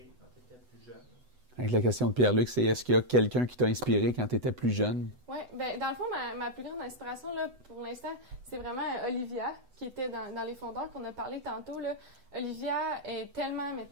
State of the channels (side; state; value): left; late; 8.0 ms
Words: quand tu étais plus jeune? Avec la question de Pierre-Luc, c'est est-ce qu'il y a quelqu'un qui t'a inspiré quand tu étais plus jeune? Oui, ben dans le fond, ma plus grande inspiration, là, pour l'instant, c'est vraiment Olivia, qui était dans les fondeurs qu'on a parlé tantôt. Là. Olivia est tellement, mais